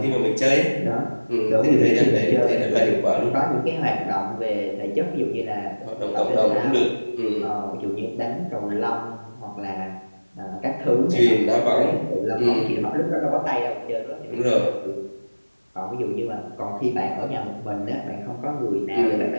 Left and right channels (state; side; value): inverted; both; correlation -1.00